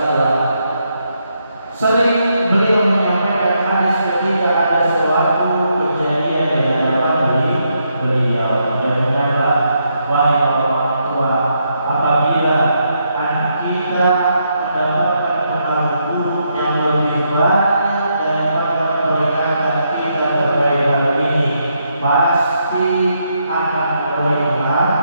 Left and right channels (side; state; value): both; inverted; correlation -0.78